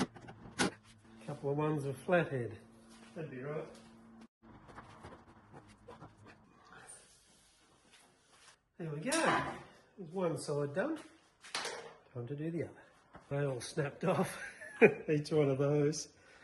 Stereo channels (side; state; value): both; identical; correlation 1.00